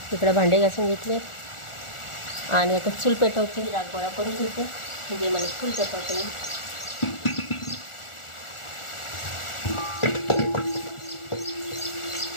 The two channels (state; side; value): late; right; 1.4 ms